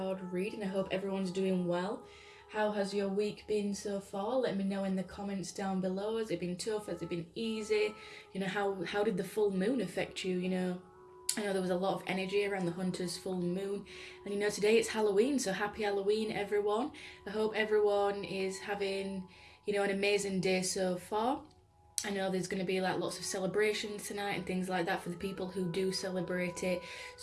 reading. I hope everyone's doing well. How has your week been so far? Let me know in the comments down below. Has it been tough? Has it been easy? How did the full moon affect you? I know there was a lot of energy around the Hunter's full moon. And today it's Halloween, so happy Halloween everyone. I hope everyone is having, an amazing day so far. I know there's going to be like lots of celebrations tonight and things like that for the people who do celebrate it.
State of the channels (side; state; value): both; identical; correlation 1.00